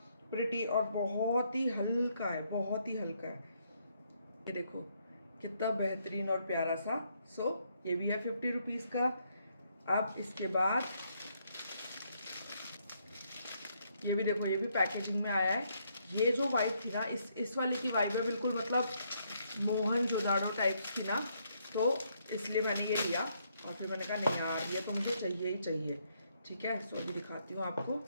प्रिटी और बहुत ही हल्का है, बहुत ही हल्का है। ये देखो कितना बेहतरीन और प्यारा सा। सो ये भी है 50 रुपीज़ का। अब इसके बाद ये भी देखो, ये भी पैकेजिंग में आया है। ये जो वाइब थी ना, इस वाले की वाइब है बिल्कुल, मतलब मोहनजोदाड़ो टाइप की ना, तो इसलिए मैंने ये लिया। और फिर मैंने कहा नहीं यार ये तो मुझे चाहिए ही चाहिए। ठीक है, सो अभी दिखाती हूँ आपको।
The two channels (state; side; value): inverted; both; correlation -0.73